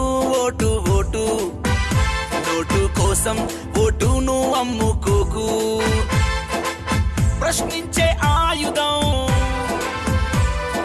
vote vote note కోసం ఓటును అమ్ముకోకు ప్రశ్నించే ఆయుధం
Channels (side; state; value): both; identical; correlation 1.00